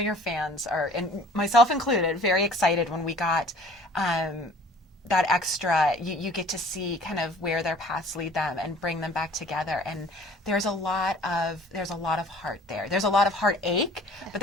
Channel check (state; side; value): normal; both; correlation 0.50